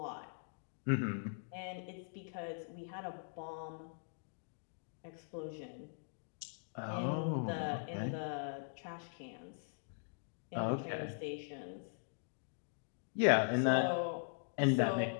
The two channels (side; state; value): right; silent; digital silence